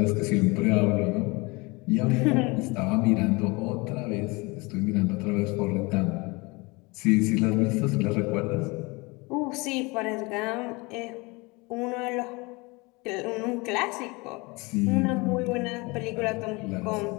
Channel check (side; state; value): right; quieter; 25.8 dB